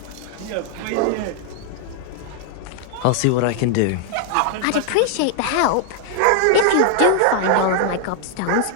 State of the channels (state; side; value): different; both; correlation 0.00